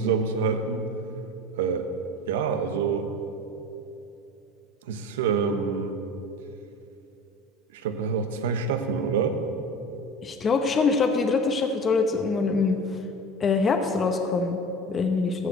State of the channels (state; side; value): normal; both; correlation 0.33